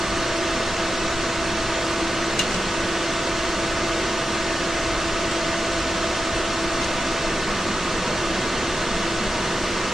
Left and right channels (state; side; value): normal; both; correlation 0.90